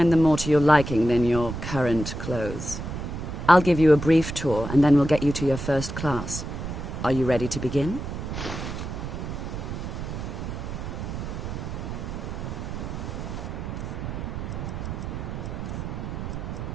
them more to your liking than your current clothes. I'll give you a brief tour, and then we'll get you to your first class. Are you ready to begin?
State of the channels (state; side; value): noise; right; rumble, 6 dB below the sound